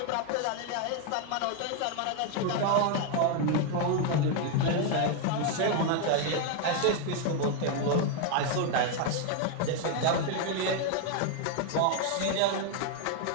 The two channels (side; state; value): both; different; correlation 0.01